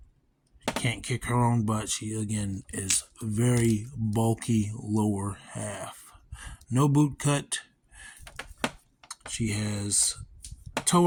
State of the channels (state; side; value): identical; both; correlation 1.00